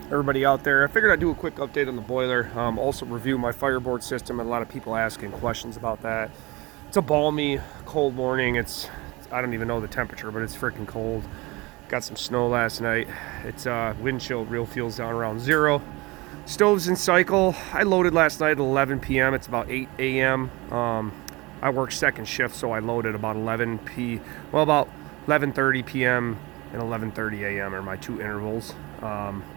everybody out there. I figured I'd do a quick update on the boiler, also review my Fireboard system, and a lot of people asking questions about that. It's a balmy, cold morning. I don't even know the temperature, but it's freaking cold. Got some snow last night. It's wind chill, real feels down around 0. Stove's in cycle. I loaded last night at 11 p.m. It's about 8 a.m. I work second shift, so I loaded about 11:30 p.m. and 11:30 a.m. are my two intervals. A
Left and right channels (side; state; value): left; quieter; 23.4 dB